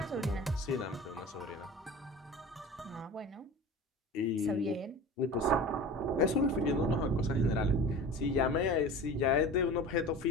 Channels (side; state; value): both; normal; correlation 0.36